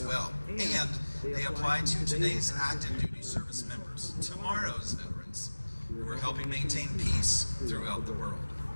well. And they apply to today's active duty service members, tomorrow's veterans, who are helping maintain peace throughout the world.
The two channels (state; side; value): inverted; both; correlation -1.00